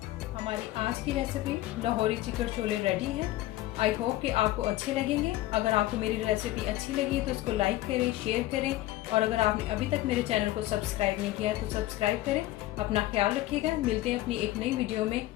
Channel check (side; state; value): right; quieter; 15.9 dB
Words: हमारी आज की recipe Lahori chicken chole ready है। आई होप कि आपको अच्छे लगेंगे। अगर आपको मेरी रेसिपी अच्छी लगी तो इसको लाइक करें, शेयर करें, और अगर आपने अभी तक मेरे चैनल को सब्सक्राइब नहीं किया है तो सब्सक्राइब करें। अपना ख्याल रखिएगा। मिलते हैं अपनी एक नई वीडियो में।